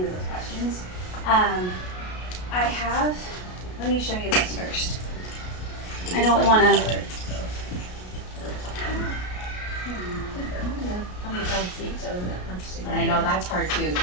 those questions. Let me show you this first. I don't want to. And I know that's hard too.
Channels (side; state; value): right; late; 33 ms